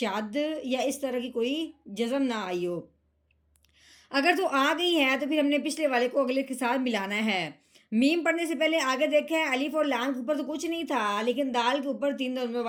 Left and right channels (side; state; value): both; identical; correlation 1.00